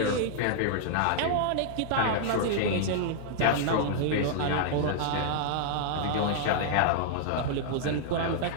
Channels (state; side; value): different; both; correlation -0.01